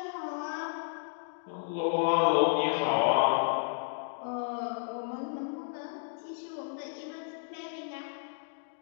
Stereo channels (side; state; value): right; silent; digital silence